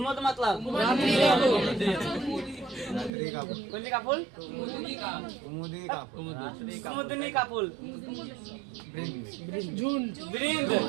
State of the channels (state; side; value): drops out; left; at 3.1 s